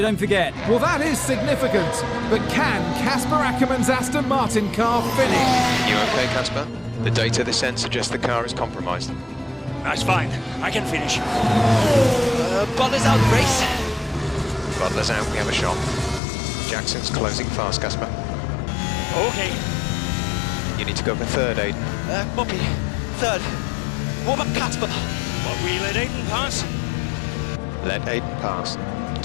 don't forget. Well, that is significant. But can Casper Ackerman's Aston Martin car finish? You okay, Casper? The data this end suggests the car is compromised. That's fine. I can finish. Butler's out the race. Butler's out, we have a shot. Jackson's closing fast, Casper. Okay. You need to go for third, Aiden. Copy. Third. What about Casper? What, we let Aiden pass? Let Aiden pass.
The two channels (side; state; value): right; drops out; at 16.2 s